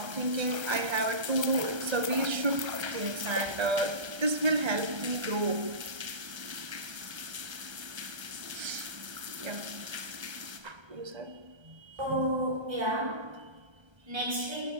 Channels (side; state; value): left; late; 1.3 ms